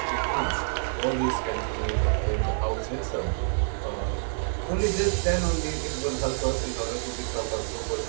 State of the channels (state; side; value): silent; left; digital silence